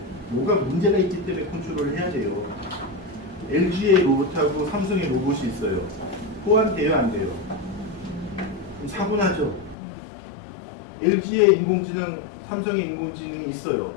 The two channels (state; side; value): drops out; right; at 9.8 s